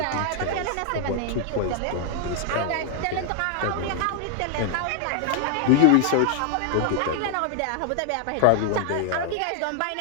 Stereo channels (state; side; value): different; both; correlation 0.00